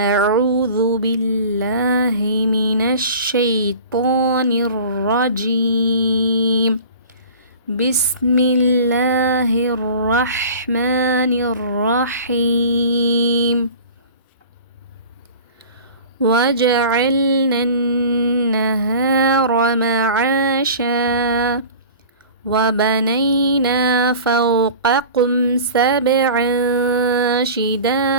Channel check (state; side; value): inverted; both; correlation -0.40